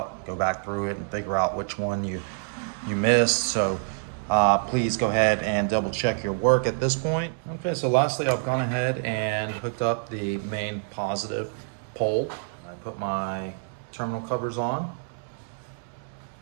go back through it, and figure out which one you missed. So please go ahead and double check your work at this point. Okay, so lastly, I've gone ahead and hooked up the main positive pole. I put my terminal covers on.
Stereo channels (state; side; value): silent; left; digital silence